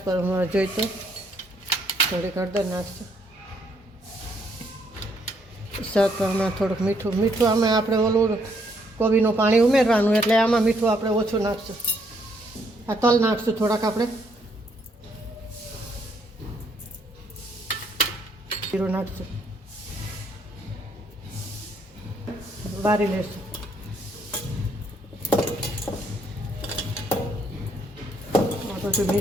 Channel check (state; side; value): normal; both; correlation 0.70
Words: પર જોઈ તો થોડીક હળદર નાખશું. સ્વાદ પ્રમાણે થોડુંક મીઠું આમાં આપણે ઓલું કોબીનું પાણી ઉમેરવાનું, એટલે આમાં મીઠું આપણે ઓછું નાખશું. આ તલ નાખશું થોડાક આપણે, જીરું નાખશું, બારી લેશું. બધું